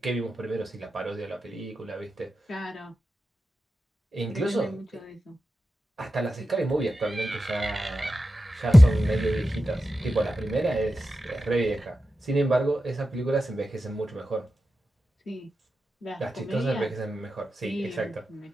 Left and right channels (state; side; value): normal; both; correlation 0.91